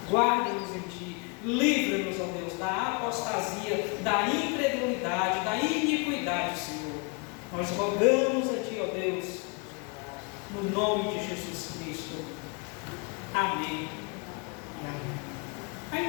Guarda-nos em Ti. Livra-nos, ó Deus, da apostasia, da incredulidade, da iniquidade, Senhor. Nós rogamos a Ti, ó Deus, no nome de Jesus Cristo. Amém e amém.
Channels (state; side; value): quieter; right; 32.4 dB